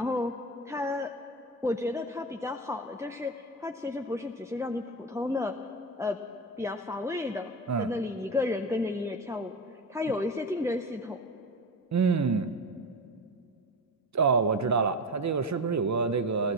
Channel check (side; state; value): both; normal; correlation 0.24